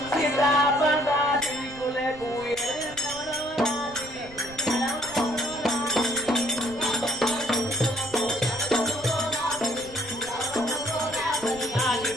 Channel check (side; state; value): right; noise; rumble, 19 dB below the sound